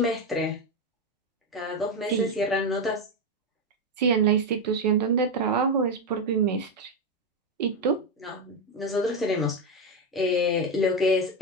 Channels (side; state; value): both; normal; correlation 0.09